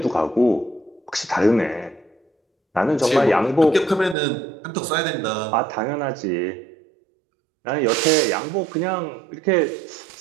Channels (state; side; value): drops out; left; at 4.2 s